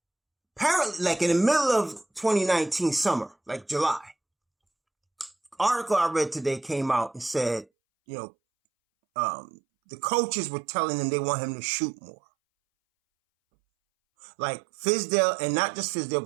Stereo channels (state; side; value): drops out; left; at 7.7 s